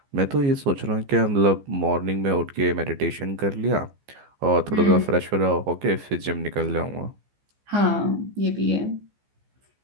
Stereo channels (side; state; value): left; late; 15 ms